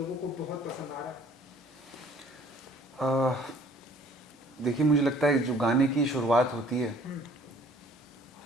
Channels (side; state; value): both; normal; correlation 0.55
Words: को बहुत पसंद आ रहा है। देखिए, मुझे लगता है जो गाने की शुरुआत होती है हम्म,